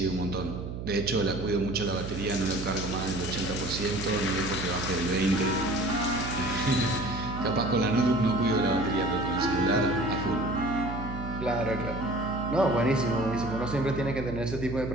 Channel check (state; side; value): noise; right; hum, 7 dB below the sound